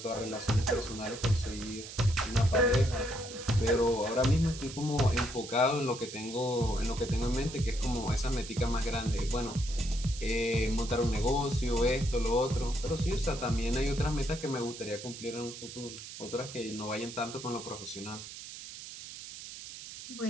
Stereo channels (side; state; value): right; noise; hiss, 12 dB below the sound